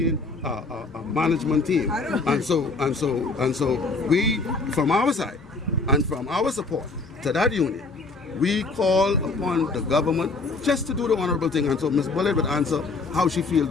management team. And so we, from our side and from our support to that union, we call upon the government just to do the honorable thing. And so Ms. Bullitt would answer how she feels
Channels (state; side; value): quieter; right; 3.8 dB